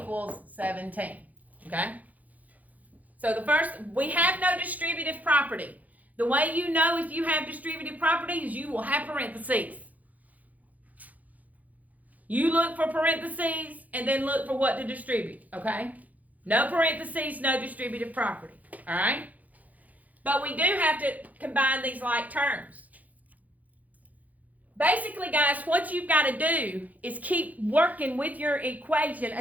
17. Okay? So the first, we have no distributive property. The way you know if you have distributive property is you will have parentheses. You look for parentheses and then look for what to distribute. Okay? No parentheses, no distributive property. All right? But we do have to combine these like terms. Basically, guys, what you've got to do is keep working with your equation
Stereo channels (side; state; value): left; late; 0.078 ms